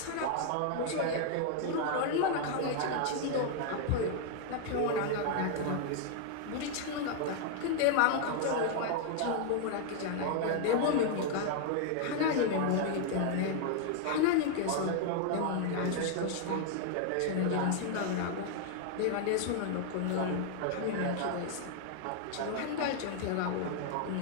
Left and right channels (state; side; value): different; both; correlation 0.00